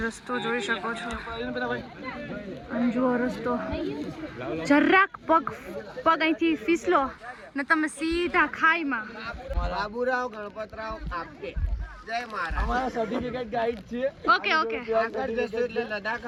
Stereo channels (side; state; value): both; identical; correlation 1.00